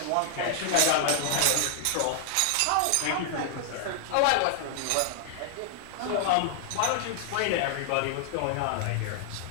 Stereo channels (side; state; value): both; different; correlation -0.01